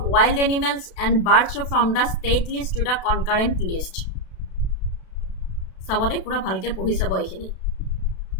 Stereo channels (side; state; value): right; late; 32 ms